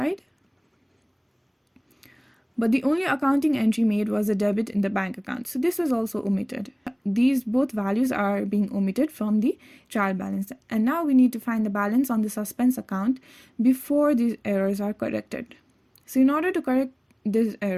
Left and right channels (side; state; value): both; identical; correlation 1.00